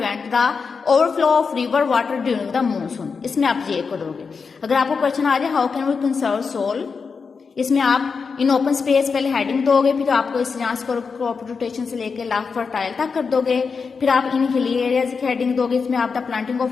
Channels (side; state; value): right; quieter; 5.3 dB